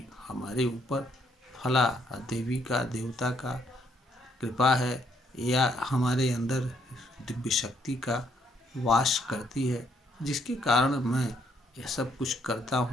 हमारे ऊपर फला देवी का, देवता का कृपा है या हमारे अंदर दिव्य शक्ति का वास करती है, जिसके कारण मैं यह सब कुछ करता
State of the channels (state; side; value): normal; both; correlation 0.70